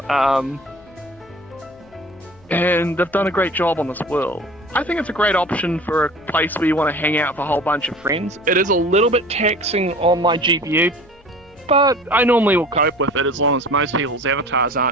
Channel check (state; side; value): noise; left; hum, 29 dB below the sound